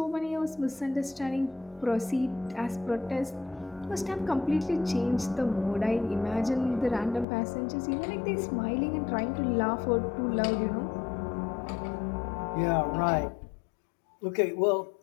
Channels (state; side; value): drops out; right; at 7.2 s